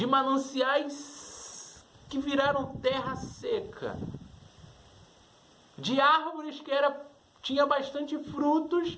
mananciais que viraram terra seca, de árvores que tinha bastante frutos,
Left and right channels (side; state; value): both; identical; correlation 1.00